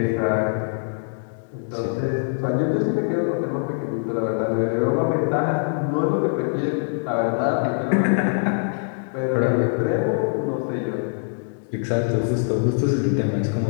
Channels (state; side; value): silent; right; 62 dB below the other